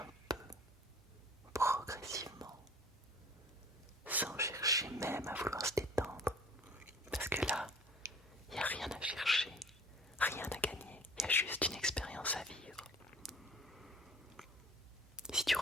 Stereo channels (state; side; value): normal; both; correlation 0.48